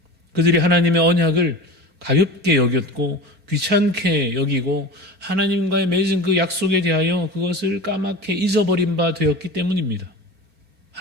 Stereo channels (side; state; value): left; late; 4.4 ms